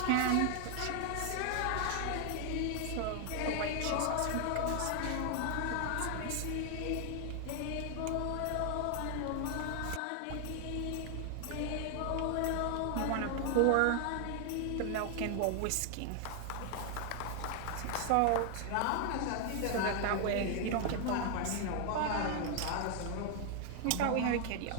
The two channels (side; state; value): both; different; correlation 0.00